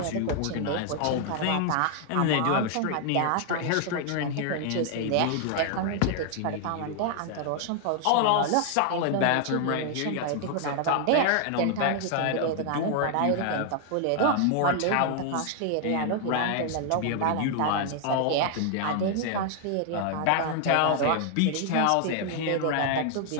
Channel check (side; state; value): both; different; correlation 0.00